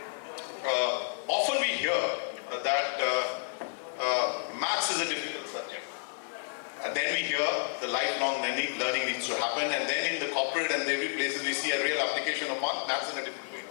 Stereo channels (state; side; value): silent; right; digital silence